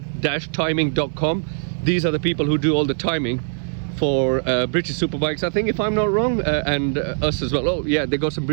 timing.com. These are the people who do all the timing for British Superbikes, I think, if I'm not wrong, and us as well. Oh yeah, they got some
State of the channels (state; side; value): silent; left; digital silence